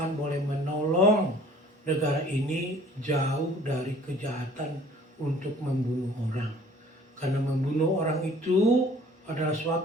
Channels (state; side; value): normal; both; correlation 0.52